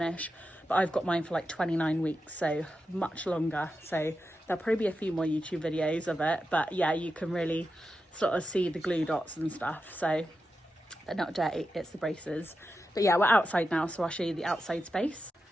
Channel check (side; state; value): both; normal; correlation 0.89